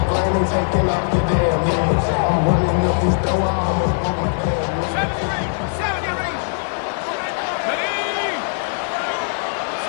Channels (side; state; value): right; silent; digital silence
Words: grain and taking off your damn head. I'm running up this door, I almost broke my damn leg. 70 range. Ready?